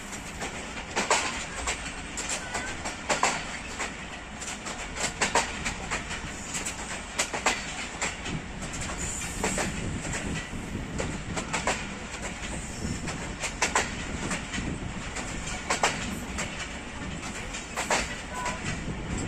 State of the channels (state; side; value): identical; both; correlation 1.00